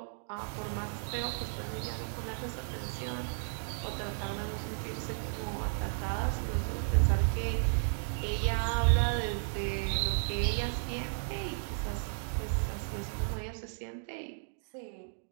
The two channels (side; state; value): left; silent; digital silence